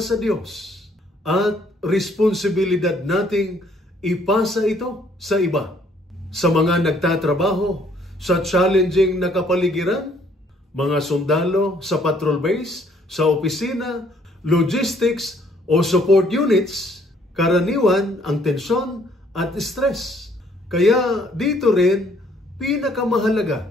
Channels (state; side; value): normal; both; correlation 0.64